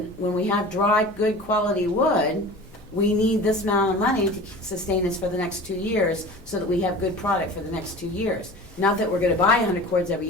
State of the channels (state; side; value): normal; both; correlation 0.38